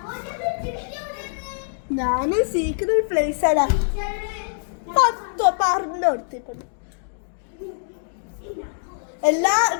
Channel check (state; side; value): silent; right; digital silence